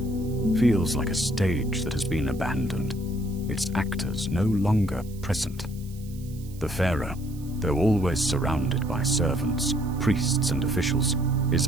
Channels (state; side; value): noise; right; hiss, 23 dB below the sound